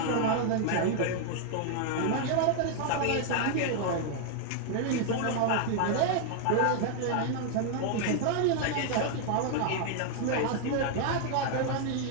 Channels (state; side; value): different; both; correlation 0.00